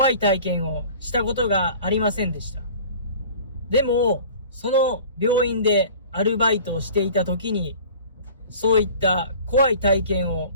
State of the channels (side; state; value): both; inverted; correlation -0.45